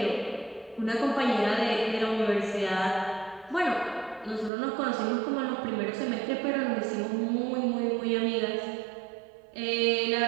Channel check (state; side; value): drops out; left; at 4.5 s